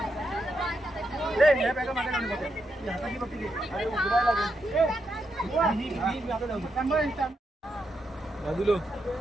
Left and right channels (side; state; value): both; normal; correlation 0.83